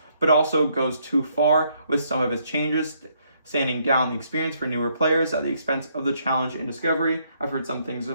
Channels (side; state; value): both; inverted; correlation -0.71